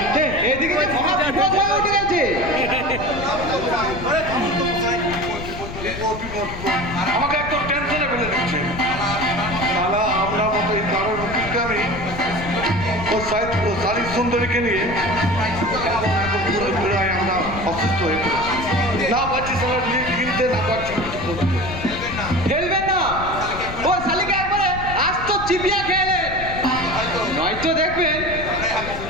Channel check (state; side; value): noise; left; rumble, 10 dB below the sound